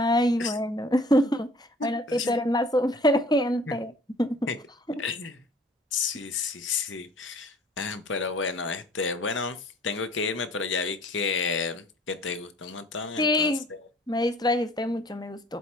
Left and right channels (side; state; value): both; normal; correlation 0.52